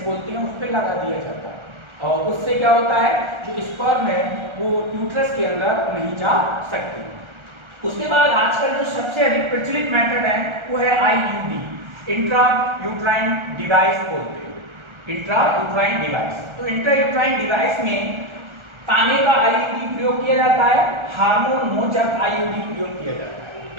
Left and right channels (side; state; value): left; late; 1.3 ms